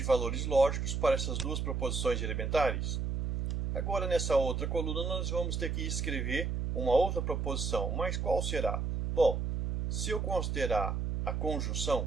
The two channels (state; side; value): noise; right; hum, 1 dB below the sound